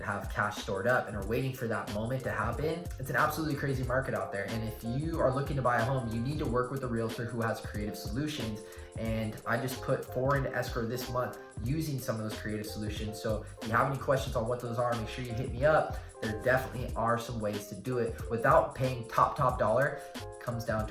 have cash stored up and are waiting for that moment to happen. It's an absolutely crazy market out there. And if you are looking to buy a home, you need to work with a realtor who has creative solutions. And I just put 4 into escrow this month using some of those creative solutions. So if you have any questions on what those are, make sure you hit me up. There definitely are some ways to do it without paying top dollar. It comes down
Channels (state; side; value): identical; both; correlation 1.00